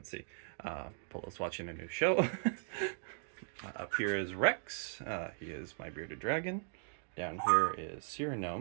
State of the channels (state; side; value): silent; left; digital silence